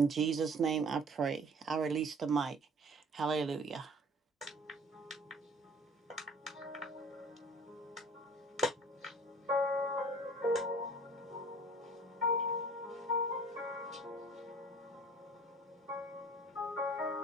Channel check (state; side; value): normal; both; correlation 0.49